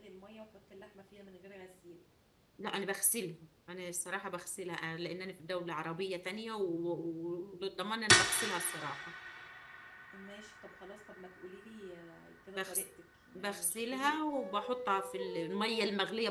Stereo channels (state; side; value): identical; both; correlation 1.00